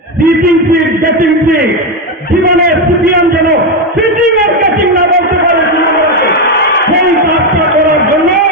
সিট, গেটিং সিট, জীবনে সিপিএম যেন সিটিং আর গেটিং না বলতে পারে তৃণমূলকে। সেই কাজটা করার জন্য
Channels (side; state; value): both; normal; correlation 0.09